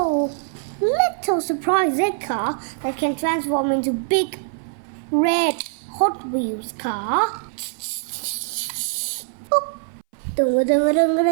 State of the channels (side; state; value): left; silent; 60 dB below the other